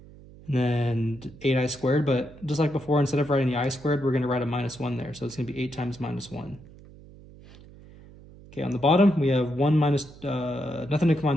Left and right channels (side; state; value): right; noise; hum, 21 dB below the sound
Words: And then 8i squared, but just like before, instead of writing the I squared, we're going to write a minus 1 there. So it's going to be 8 times minus 1. Okay, on the bottom, we have 1 minus, nothing to combine